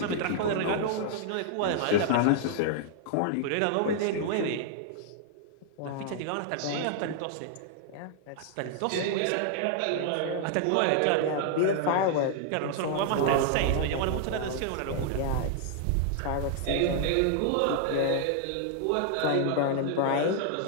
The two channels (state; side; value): different; both; correlation -0.01